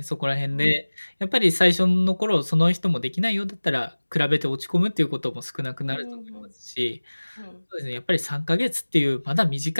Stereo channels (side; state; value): both; inverted; correlation -1.00